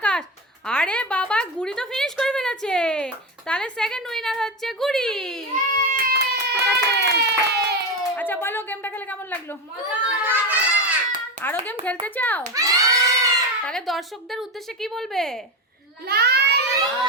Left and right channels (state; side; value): normal; both; correlation 0.17